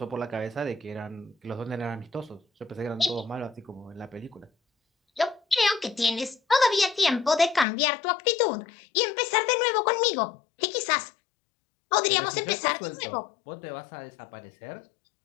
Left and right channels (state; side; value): drops out; right; at 7.7 s